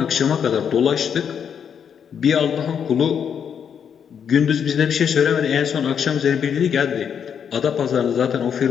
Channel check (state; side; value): quieter; right; 7.7 dB